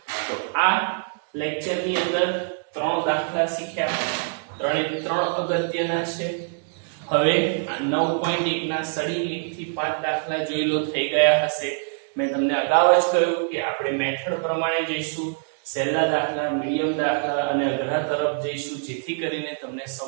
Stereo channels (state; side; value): silent; left; digital silence